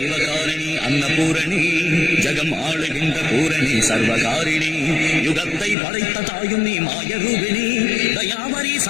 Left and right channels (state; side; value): drops out; right; at 5.8 s